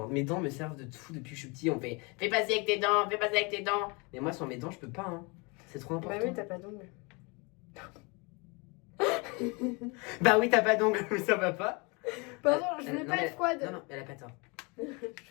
Mes dents me servent de tout depuis que je suis petit. On fait fais passer avec tes dents, fais passer avec tes dents. Mais moi, sans mes dents, je peux pas. Hein. C'est trop important. Bah oui, t'as pas d'ongles. Bah oui, t'as pas d'ongles, mais ça va pas. Pardon, je voulais Non, pas mais- être froide. Non, non, elle a pas tort.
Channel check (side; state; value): right; quieter; 29.5 dB